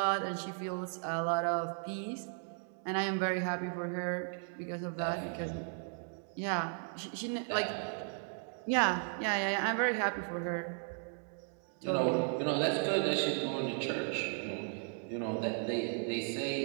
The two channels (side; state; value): left; silent; 54 dB below the other